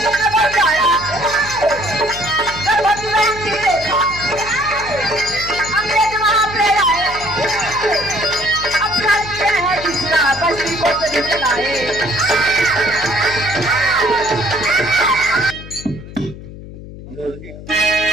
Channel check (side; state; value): left; noise; hum, 14 dB below the sound